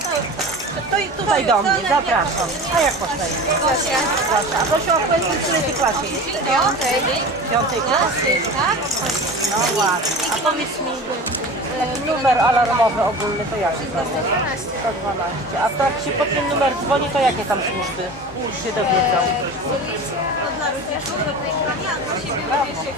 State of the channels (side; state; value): both; normal; correlation 0.34